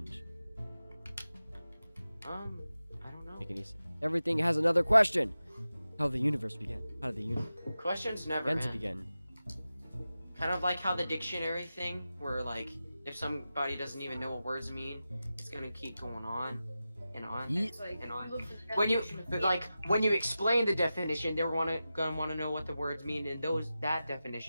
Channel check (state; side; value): inverted; both; correlation -0.93